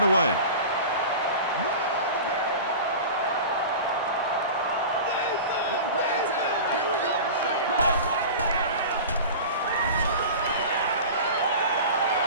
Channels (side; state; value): both; inverted; correlation -0.33